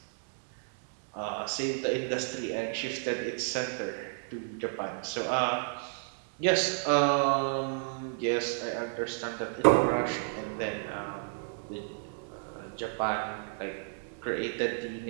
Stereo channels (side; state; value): left; silent; digital silence